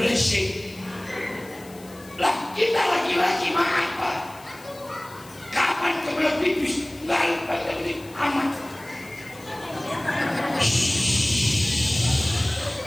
Lah kita laki-laki mah apa? Kapan kebelah pipis? Nggak lupa lagi amat.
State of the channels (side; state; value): left; noise; hiss, 22 dB below the sound